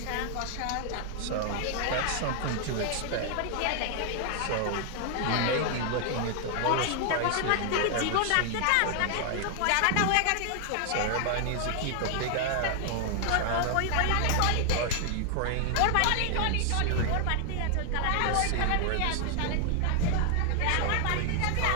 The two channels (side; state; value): both; different; correlation 0.00